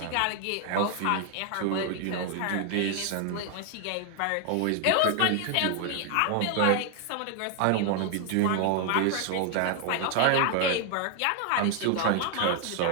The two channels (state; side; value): different; both; correlation 0.00